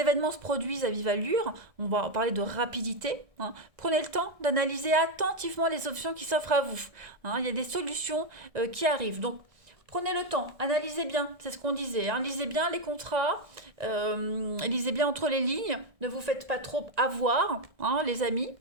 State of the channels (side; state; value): left; late; 1.6 ms